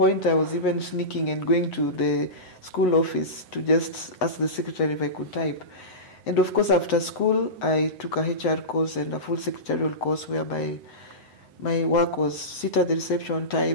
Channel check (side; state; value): right; late; 7.9 ms